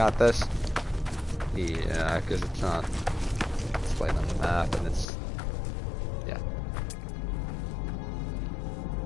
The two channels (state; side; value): drops out; right; at 5.1 s